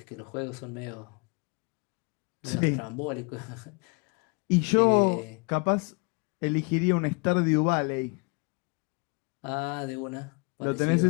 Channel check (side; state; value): right; quieter; 31.6 dB